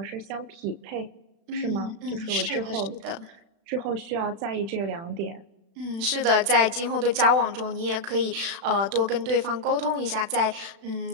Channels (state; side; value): late; left; 36 ms